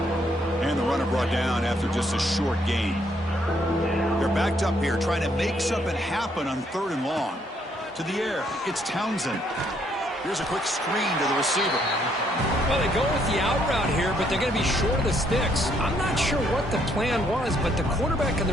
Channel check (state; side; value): normal; both; correlation 0.70